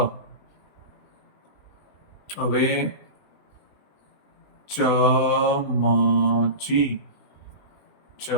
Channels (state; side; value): late; right; 20 ms